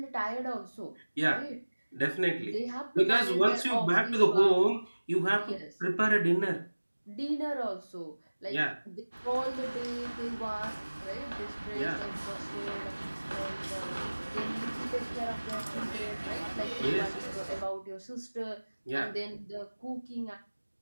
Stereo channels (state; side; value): inverted; both; correlation -1.00